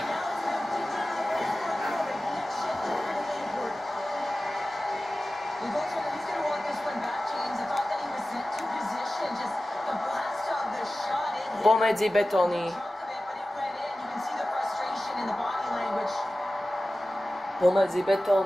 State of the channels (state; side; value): normal; both; correlation 0.95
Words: Pomedzi betóny. Pomedzi